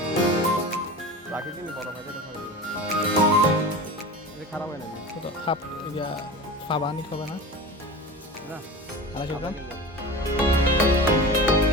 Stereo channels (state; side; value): normal; both; correlation 0.31